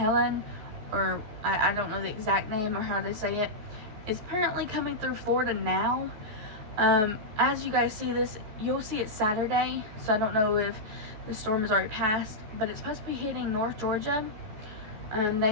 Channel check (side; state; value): left; late; 14 ms